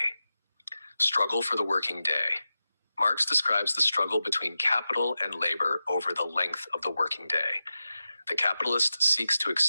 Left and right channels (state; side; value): inverted; both; correlation -0.93